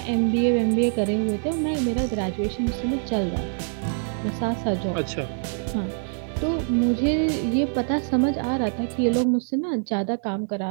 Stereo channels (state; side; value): silent; left; digital silence